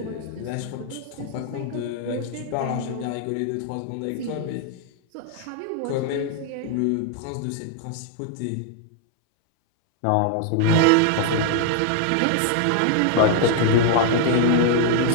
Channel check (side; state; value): both; different; correlation 0.00